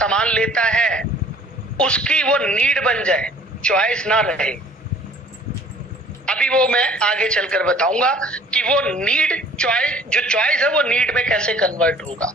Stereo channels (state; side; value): normal; both; correlation 0.53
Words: लेता है, उसकी वो नीड बन जाए, चॉइस ना रहे। अभी वो मैं आगे चलकर बताऊंगा कि वो नीड चॉइस, जो चॉइस है वो नीड में कैसे कन्वर्ट होगा।